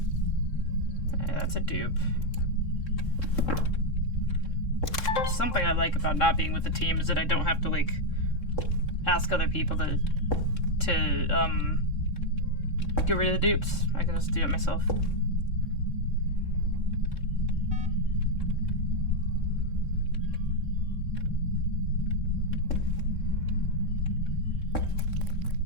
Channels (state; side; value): late; right; 3.7 ms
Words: That's a dupe. Something I like about not being with the team is that I don't have to, like, ask other people to get rid of the dupes. I can just do it myself.